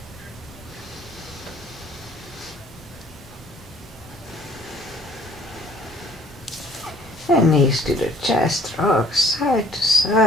And knees to the chest, rock side to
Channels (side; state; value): both; normal; correlation 0.57